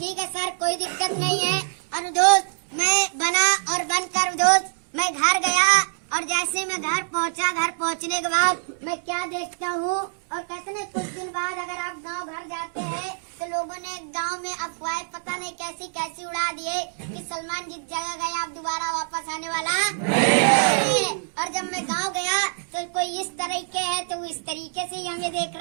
है सर कोई दिक्कत नहीं है। और दोस्त मैं बना और बनकर दोस्त मैं घर गया, और जैसे मैं घर पहुंचा, घर पहुंचने के बाद मैं क्या देखता हूँ, और कहते हैं कुछ दिन बाद अगर आप गांव घर जाते हैं तो लोगों ने गांव में अफवाहें पता नहीं कैसी उड़ा दिए कि सलमान जिस जगह गया अब दोबारा वापस आने वाला नहीं। और जब मैं गांव गया तो कोई इस तरीके है तो वो इस तरीके से ही हमें देख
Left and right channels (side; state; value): left; silent; 62 dB below the other